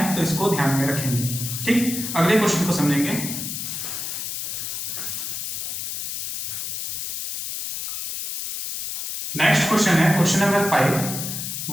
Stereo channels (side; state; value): left; noise; hiss, 4 dB below the sound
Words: तो इसको ध्यान में रखेंगे। ठीक, अगले क्वेश्चन को समझेंगे। नेक्स्ट क्वेश्चन है क्वेश्चन नंबर 5,